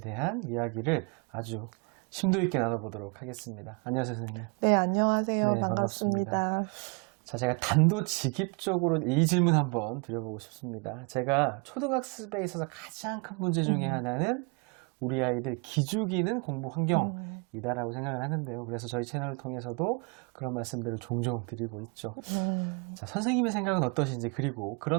대한 이야기를 아주 심도 있게 나눠보도록 하겠습니다. 안녕하세요, 선생님. 네, 안녕하세요. 네, 반갑습니다. 자, 제가 단도직입적으로 이 질문 한번 드려보고 싶습니다. 제가 초등학습에 있어서 가장 큰 문제 중에 하나는 우리 아이들 기죽이는 공부 환경이다라고 생각을 하는데요. 그래서 저희 채널을 통해서도 그런 말씀들을 종종 드리고 있죠. 자, 선생님의 생각은 어떠신지, 그리고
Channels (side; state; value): left; quieter; 33.3 dB